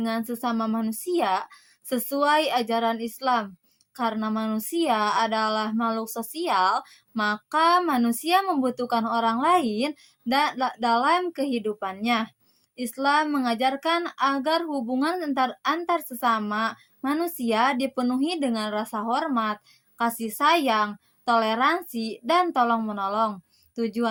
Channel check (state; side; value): identical; both; correlation 1.00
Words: sesama manusia sesuai ajaran Islam. Karena manusia adalah makhluk sosial, maka manusia membutuhkan orang lain dalam kehidupannya. Islam mengajarkan agar hubungan antar sesama manusia dipenuhi dengan rasa hormat, kasih sayang, toleransi, dan tolong-menolong.